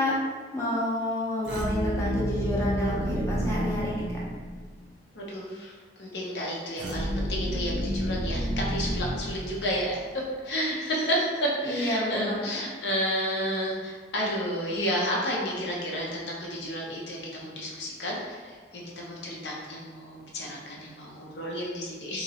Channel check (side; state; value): both; normal; correlation 0.40